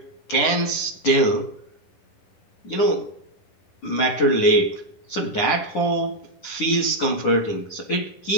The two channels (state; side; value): late; right; 9.9 ms